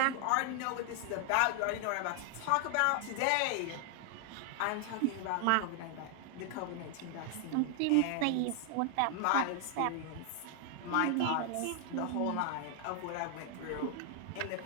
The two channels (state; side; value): different; both; correlation 0.00